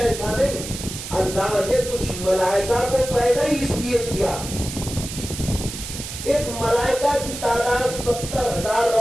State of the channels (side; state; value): right; noise; hiss, 9 dB below the sound